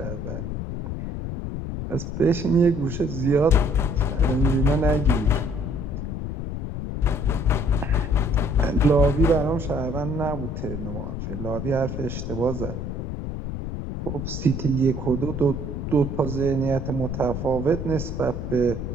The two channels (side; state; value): left; noise; rumble, 5 dB below the sound